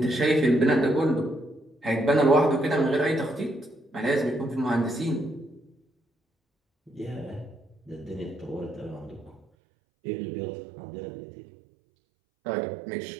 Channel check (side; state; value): left; drops out; at 9.5 s